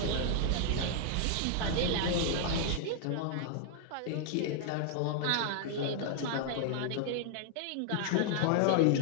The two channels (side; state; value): both; different; correlation 0.00